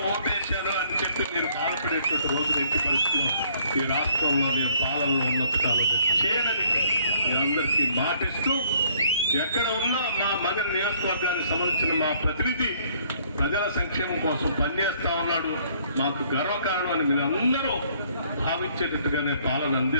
ఓటేశాను అని చెప్పి మీరు బాధపడేటువంటి రోజు ఎట్టి పరిస్థితుల్లో ఈ రాష్ట్రంలో నేను పాలనలో ఉన్నంత కాలం చేయనని మీ అందరికీ మాటిస్తూ, ఎక్కడ ఉన్నా మా మగ నియోజకవర్గానికి సంబంధించిన మా ప్రతినిధి ప్రజల సంక్షేమం కోసం పనిచేస్తా ఉన్నాడు, మాకు గర్వకారణం అని మీరు అందరూ భావించేటట్టుగానే పాలన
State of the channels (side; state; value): both; inverted; correlation -0.63